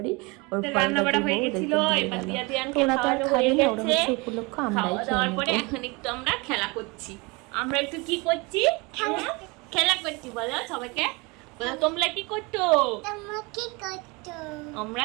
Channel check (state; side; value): quieter; left; 27.0 dB